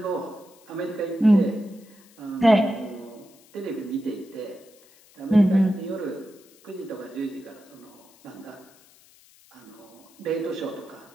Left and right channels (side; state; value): left; noise; hiss, 27 dB below the sound